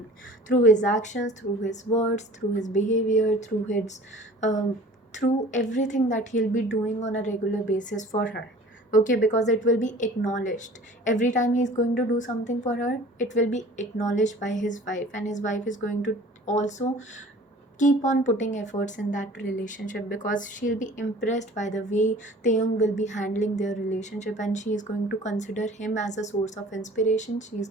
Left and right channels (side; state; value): both; normal; correlation 0.46